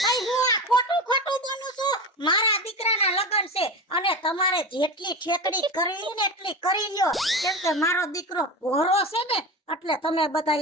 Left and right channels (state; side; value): normal; both; correlation 0.25